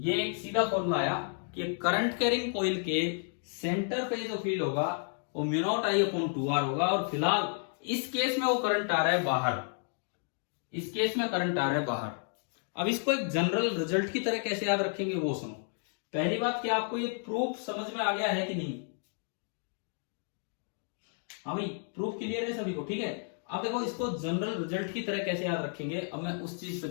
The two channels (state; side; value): silent; right; 57 dB below the other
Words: एक सीधा फॉर्मूला आया कि करंट कैरिंग कॉइल के सेंटर पे जो फील्ड होगा वो mu not I upon 2 R होगा। और फिलहाल इस केस में वो करंट आ रहा है बाहर, इस केस में करंट आ रहा है बाहर। अब इसको एक जनरल रिजल्ट की तरह कैसे याद रखेंगे वो सुनो। पहली बात, क्या आपको ये प्रूफ समझ में आ गया है कि नहीं? हाँ भाई, प्रूफ क्लियर है सभी को? ठीक है। अब देखो इसको जनरल रिजल्ट की तरह कैसे याद रखेंगे, अब मैं उस चीज पे